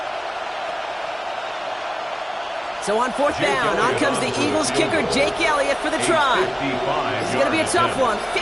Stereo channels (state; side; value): identical; both; correlation 1.00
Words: So on fourth down, on comes the Eagles kicker, Jake Elliott, for the try. This is going to be a tough one,